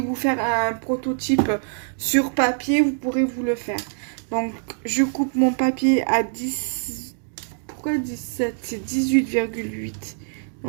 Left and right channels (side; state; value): left; silent; digital silence